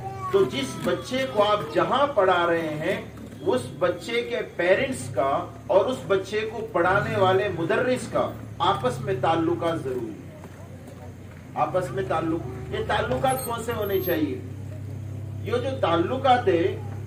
तो जिस बच्चे को आप जहां पढ़ा रहे हैं उस बच्चे के पेरेंट्स का और उस बच्चे को पढ़ाने वाले मुदर्रिस का आपस में ताल्लुकात जरूरी है। आपस में ताल्लुक, ये ताल्लुकात कौन से होने चाहिए, ये जो ताल्लुकात है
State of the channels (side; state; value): both; identical; correlation 1.00